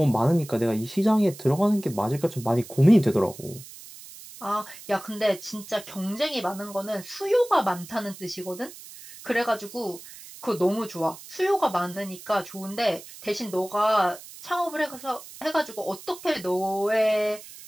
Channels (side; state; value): right; noise; hiss, 16 dB below the sound